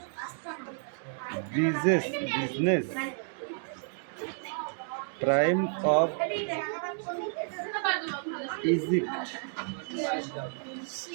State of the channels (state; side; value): silent; left; 57 dB below the other